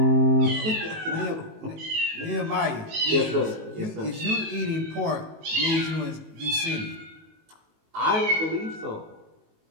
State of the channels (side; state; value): left; late; 19 ms